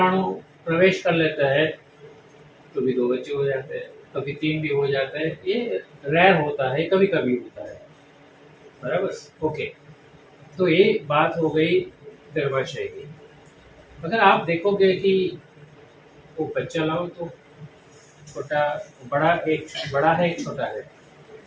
प्रवेश कर लेता है तो भी 2 बच्चे हो जाते हैं, कभी 3 भी हो जाते हैं। ये रेयर होता है, कभी कभी होता है। बराबर? ओके, तो ये बात हो गई गर्भाशय की। अगर आप देखोगे कि वो बच्चा लाओ तो छोटा, बड़ा है, एक छोटा है।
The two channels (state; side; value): identical; both; correlation 1.00